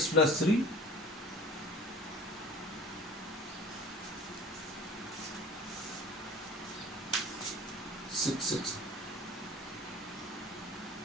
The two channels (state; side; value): normal; both; correlation 0.42